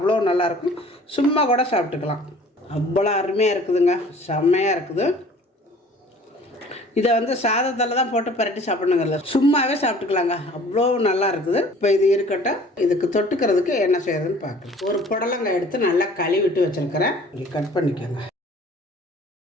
நல்லாயிருக்கும். சும்மா கூட சாப்பிட்டுக்கலாம், அவ்வளோ அருமையாக இருக்குதுங்க, செம்மையாக இருக்குது. இதை வந்து சாதத்தில் தான் போட்டு பரட்டி சாப்பிடணுங்கல்ல, சும்மாவே சாப்பிட்டுக்கலாங்க, அவ்வளோ நல்லா இருக்குது. இப்போ இது இருக்கட்டும். இதுக்கு தொட்டுக்கிறதுக்கு என்ன செய்யறதுன்னு பார்க்கலாம். ஒரு புடலங்காய் எடுத்து நல்லா கழுவிட்டு வச்சுருக்கிறேன். இப்படி கட் பண்ணிக்கோங்க.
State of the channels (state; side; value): normal; both; correlation 0.50